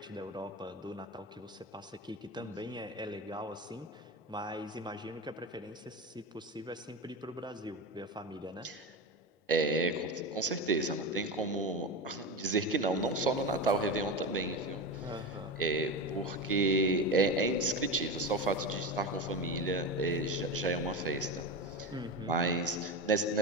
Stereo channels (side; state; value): both; normal; correlation 0.21